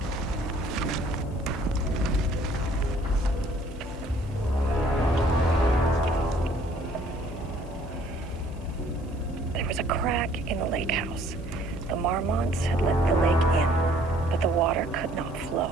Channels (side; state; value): left; noise; hiss, 28 dB below the sound